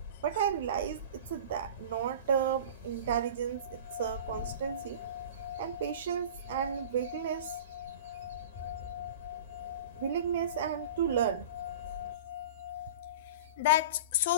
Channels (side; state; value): both; inverted; correlation -0.35